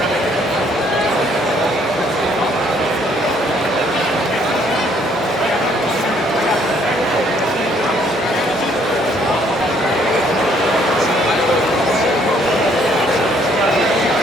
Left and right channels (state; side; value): normal; both; correlation 0.65